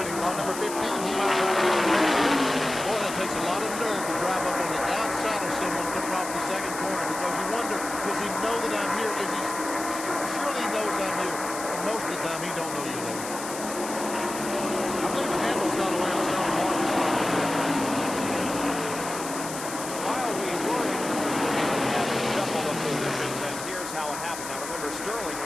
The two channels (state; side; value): noise; left; hiss, 9 dB below the sound